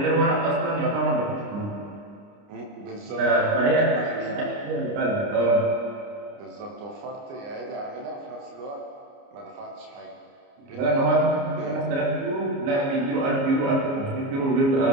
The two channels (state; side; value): late; left; 29 ms